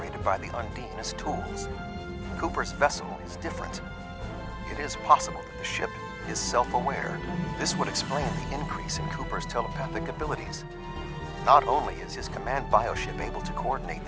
by the Undine as tools. Cooper's vessel is different. It is possible that the ship is self-aware. This would explain the increase in Cooper's telepathic abilities. Not only is his command bioship able to coordinate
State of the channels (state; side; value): identical; both; correlation 1.00